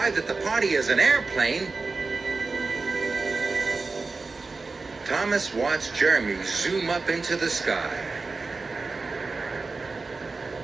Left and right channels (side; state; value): left; quieter; 4.0 dB